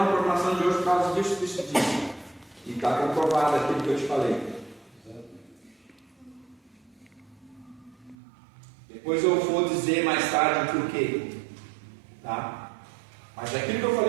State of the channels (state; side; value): drops out; left; at 8.2 s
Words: programação de hoje por causa disso. E está comprovado aquilo que eu te falei. Depois eu vou dizer mais tarde por quê. Tá? Mas aquilo que eu